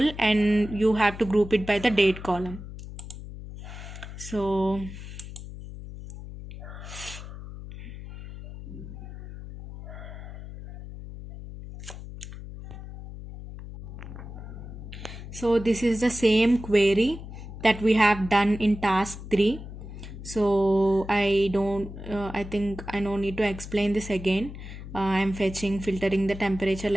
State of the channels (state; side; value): noise; left; hum, 12 dB below the sound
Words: and you have to group it by the date column. So this is the same query that we have done in task 3. So I think I don't need to explain this again. I'm filtering the temperature